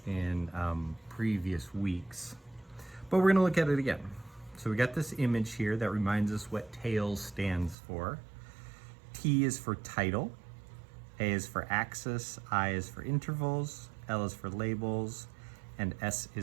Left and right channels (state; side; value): drops out; left; at 7.8 s